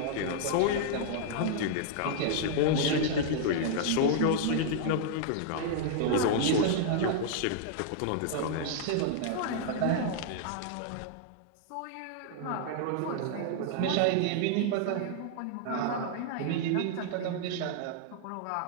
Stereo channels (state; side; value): different; both; correlation -0.01